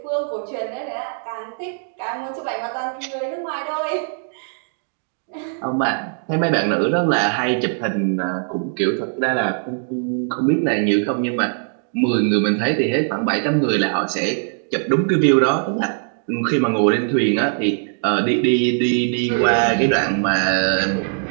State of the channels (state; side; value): silent; left; 65 dB below the other